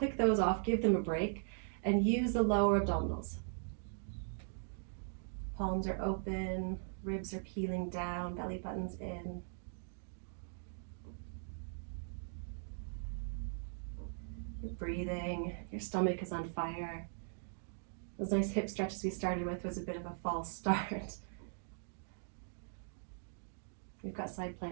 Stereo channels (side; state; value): left; silent; digital silence